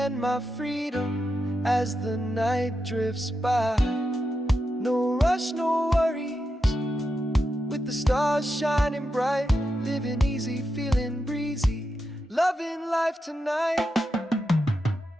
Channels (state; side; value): normal; both; correlation 0.87